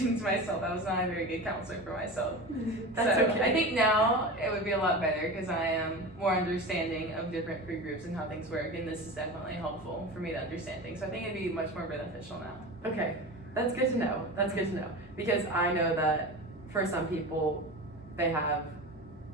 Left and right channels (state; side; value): normal; both; correlation 0.29